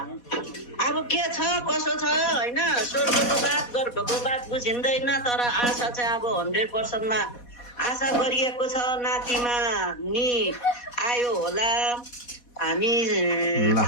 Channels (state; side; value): late; right; 4.1 ms